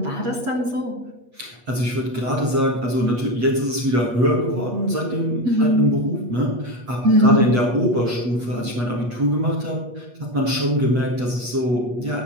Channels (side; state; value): left; late; 8.3 ms